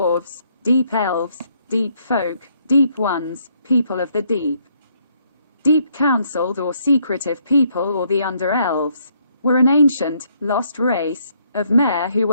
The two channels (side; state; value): both; inverted; correlation -0.70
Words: deep elves, deep folk, deep ones, people of the deep. Deep counseled or secretive people, or the under-elves, were an ancient, lost race of Mer who